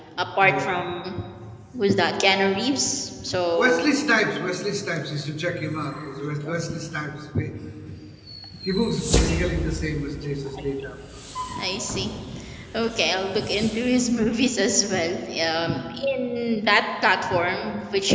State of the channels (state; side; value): identical; both; correlation 1.00